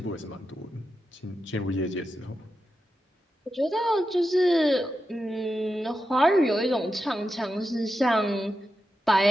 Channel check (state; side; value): normal; both; correlation 0.89